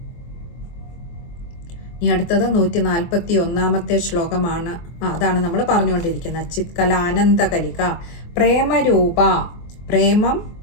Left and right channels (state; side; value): late; right; 24 ms